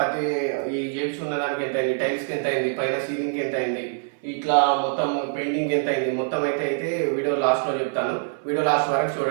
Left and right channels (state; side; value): silent; left; 59 dB below the other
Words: ఈ చేయించుకున్న దానికి ఎంత అయింది, టైల్స్కి ఎంత అయింది, పైన సీలింగ్కి ఎంత అయింది, ఇట్లా మొత్తం పెయింటింగ్ ఎంత అయింది, మొత్తం అయితే వీడియో లాస్ట్లో చెప్తాను. వీడియో లాస్ట్ వరకు